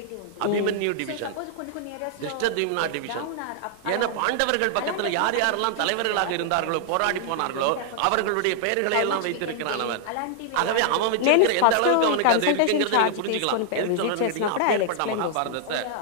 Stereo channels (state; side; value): different; both; correlation -0.01